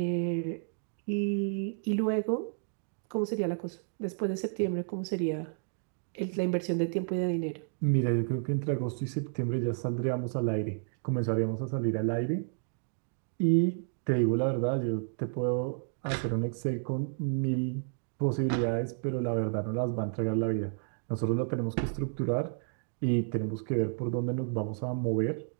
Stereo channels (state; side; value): silent; left; digital silence